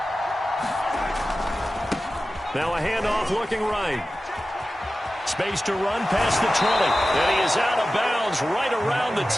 Now a handoff looking right. Space to run past the 20. And he is out of bounds right around the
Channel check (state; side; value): normal; both; correlation 0.95